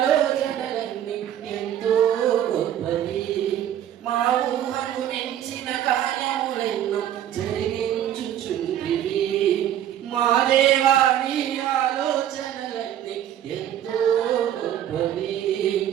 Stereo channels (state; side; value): quieter; left; 11.0 dB